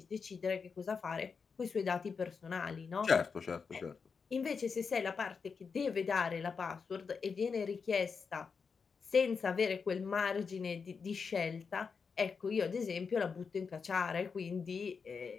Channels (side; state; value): right; quieter; 5.5 dB